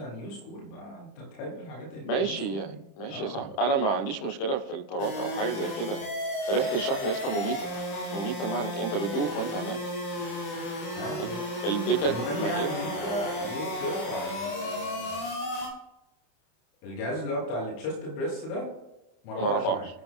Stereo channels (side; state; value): right; late; 30 ms